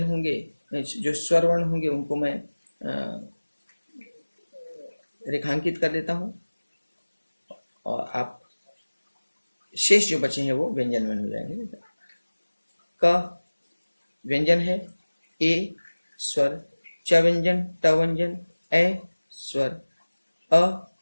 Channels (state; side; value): inverted; both; correlation -1.00